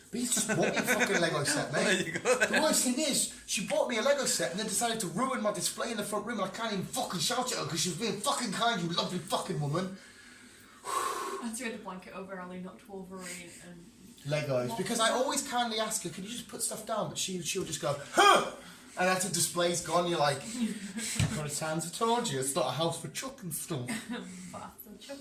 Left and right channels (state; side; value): identical; both; correlation 1.00